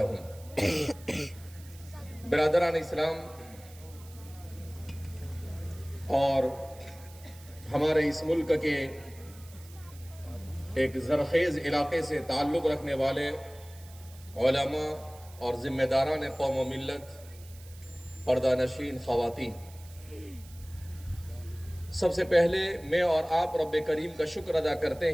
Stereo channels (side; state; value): right; noise; hiss, 22 dB below the sound